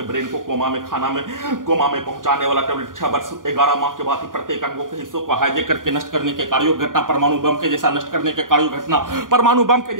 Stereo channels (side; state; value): left; late; 0.89 ms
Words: ब्रेन को कोमा में पहुंचाने वाला टैबलेट 6 वर्ष 11 माह के बाद ही प्रत्येक अंगों के हिस्सों को हाईजैक करके नष्ट करने के कार्यों घटना, परमाणु बम के जैसा नष्ट करने के कार्यों घटना, परमाणु बम के